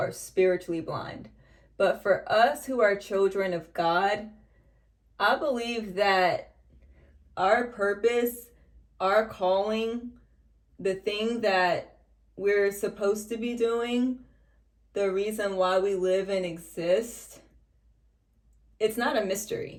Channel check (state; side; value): identical; both; correlation 1.00